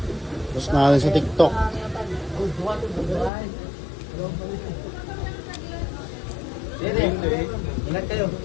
Tapos natin sa TikTok. Ingat kayo.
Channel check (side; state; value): right; drops out; at 3.3 s